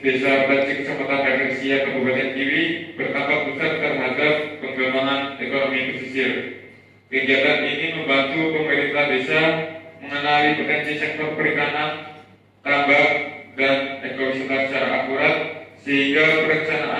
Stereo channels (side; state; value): both; identical; correlation 1.00